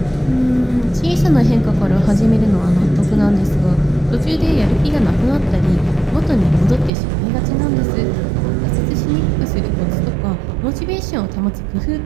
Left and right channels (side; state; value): left; drops out; at 6.9 s